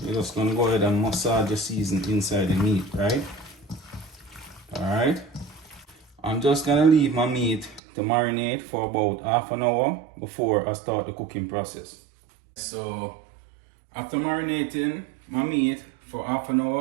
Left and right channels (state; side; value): drops out; left; at 7.8 s